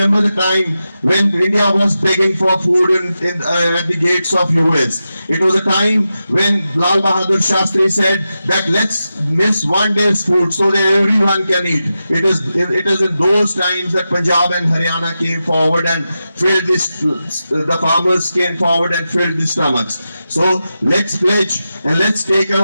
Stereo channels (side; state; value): both; inverted; correlation -0.91